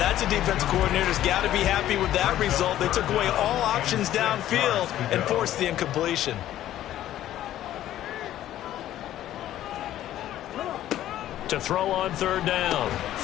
a defensive coordinator's got to be happy with that result. They took away all options downfield and forced the incompletion. To throw on third down,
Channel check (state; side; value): quieter; right; 12.8 dB